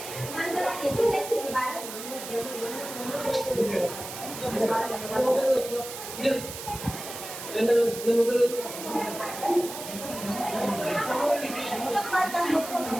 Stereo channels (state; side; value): noise; right; hiss, 10 dB below the sound